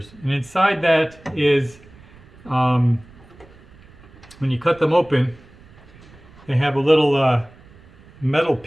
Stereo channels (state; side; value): noise; right; rumble, 24 dB below the sound